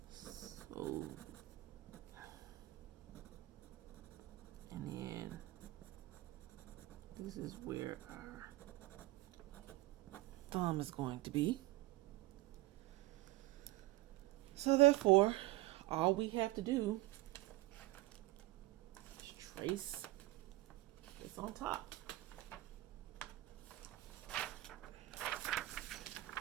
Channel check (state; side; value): quieter; left; 18.9 dB